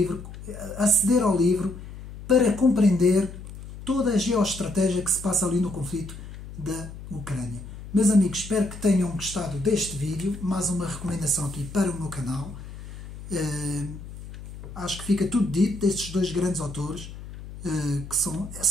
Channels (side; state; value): left; noise; hum, 13 dB below the sound